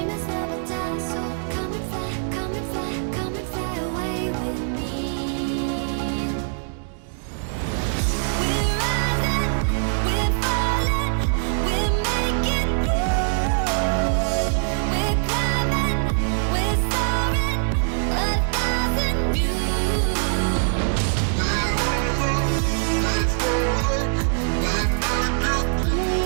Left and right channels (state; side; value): silent; left; digital silence